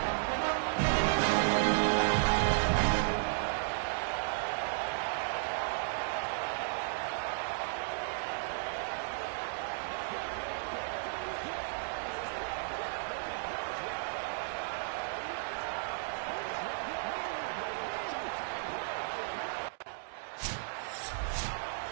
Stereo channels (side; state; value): left; silent; digital silence